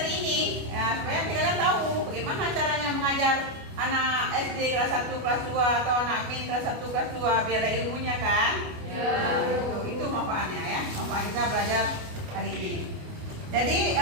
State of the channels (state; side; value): late; left; 29 ms